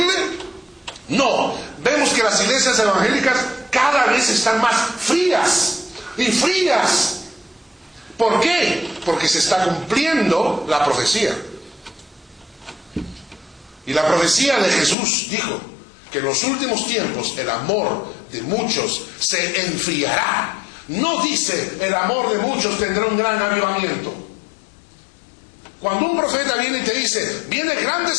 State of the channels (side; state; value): right; drops out; at 15.0 s